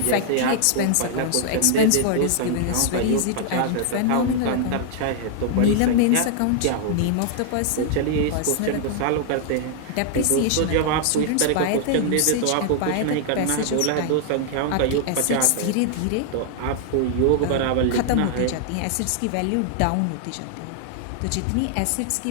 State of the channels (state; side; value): different; both; correlation 0.00